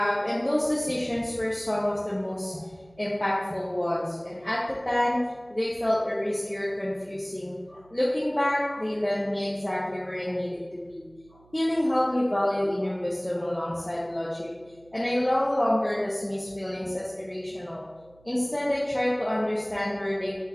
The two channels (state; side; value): noise; right; hum, 29 dB below the sound